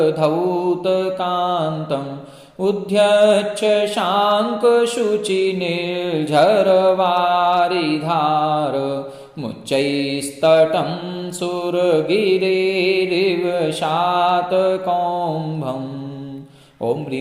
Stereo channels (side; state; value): both; identical; correlation 1.00